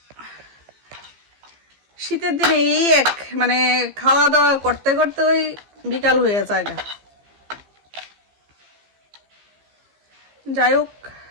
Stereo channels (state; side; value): late; left; 15 ms